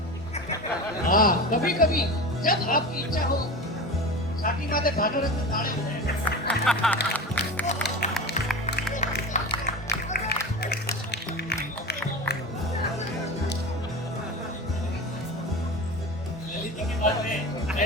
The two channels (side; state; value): both; normal; correlation 0.29